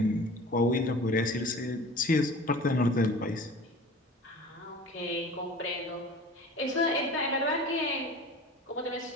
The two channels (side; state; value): both; normal; correlation 0.40